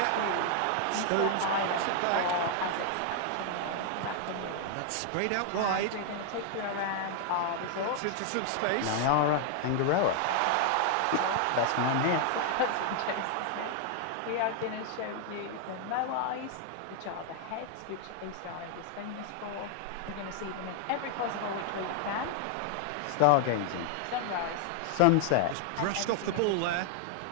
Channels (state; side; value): different; both; correlation 0.00